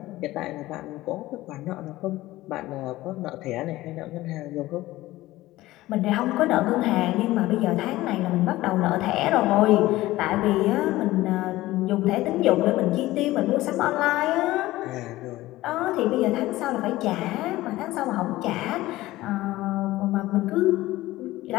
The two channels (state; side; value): quieter; right; 17.2 dB